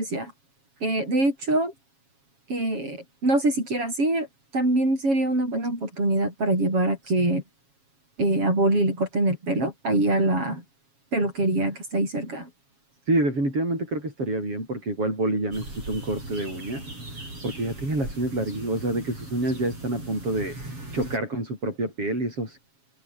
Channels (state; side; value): late; left; 7.3 ms